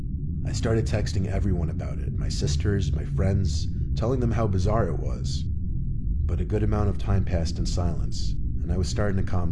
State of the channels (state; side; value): identical; both; correlation 1.00